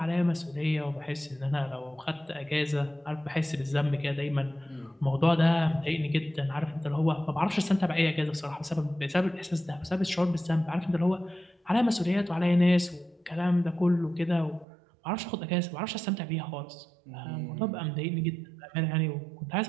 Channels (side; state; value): left; drops out; at 14.7 s